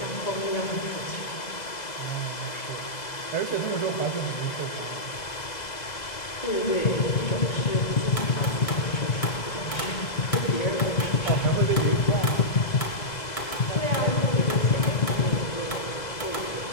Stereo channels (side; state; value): right; late; 2.0 ms